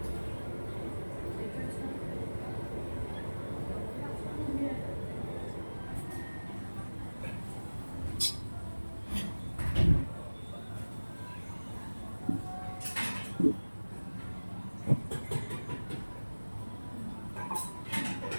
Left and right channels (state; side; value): inverted; both; correlation -1.00